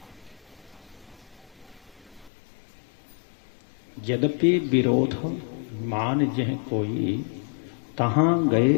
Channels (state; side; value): drops out; right; at 2.3 s